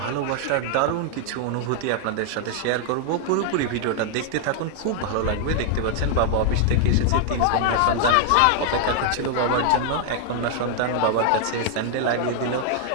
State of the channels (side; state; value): both; different; correlation 0.00